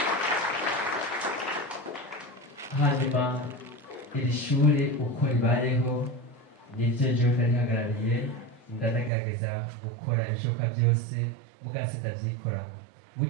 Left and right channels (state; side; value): drops out; left; at 9.1 s